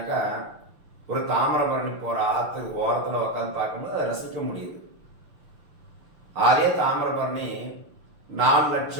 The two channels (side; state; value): left; late; 6.4 ms